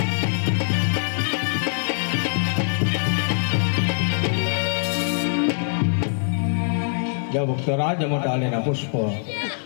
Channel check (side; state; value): right; silent; digital silence